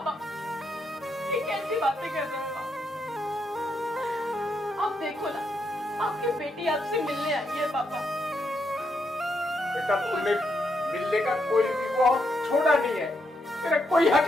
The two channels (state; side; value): normal; both; correlation 0.79